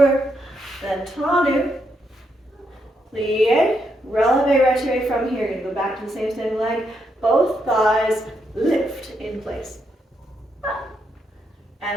Then tendu, plie, releve, retiré from here. You're going to go back to the same standing leg. Both thighs lift in place.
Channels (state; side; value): normal; both; correlation 0.79